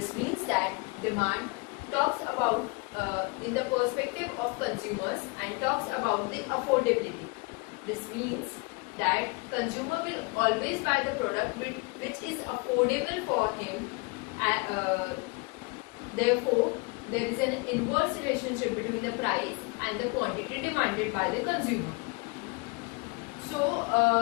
means that demand talks about in the perspective of consumers and talks about the affordability. This means that consumer will always buy the product which is affordable for him. Therefore, there is an inverse relationship between the price and the quantity demanded by the consumer. So,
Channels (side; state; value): right; quieter; 29.4 dB